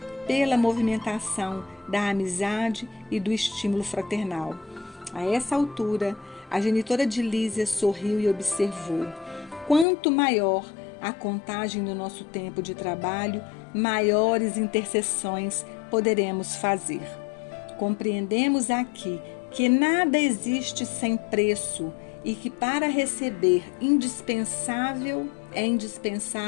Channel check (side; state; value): right; drops out; at 9.9 s